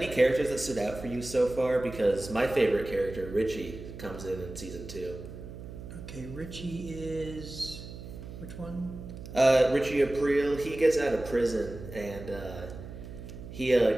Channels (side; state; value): right; noise; hum, 12 dB below the sound